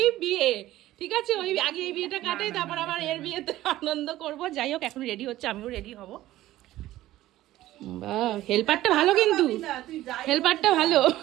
বিয়ে, ঠিক আছে, ওই আগে এই বিয়েটা কাটাই, তারপর আবার এর বিয়েতে আনন্দ করব। যাই হোক এখন রেডি হচ্ছে, আমিও রেডি হব। বাহ, হেল্পারটা ভালো, কিন্তু হেল্পারটা ভালো।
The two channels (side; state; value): left; quieter; 15.2 dB